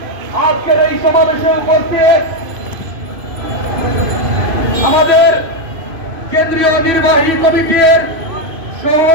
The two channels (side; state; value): left; late; 2.5 ms